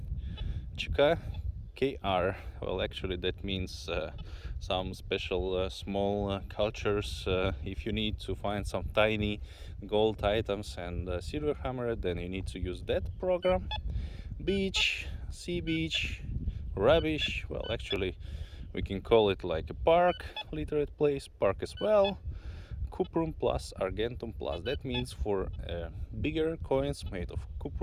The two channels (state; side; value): identical; both; correlation 1.00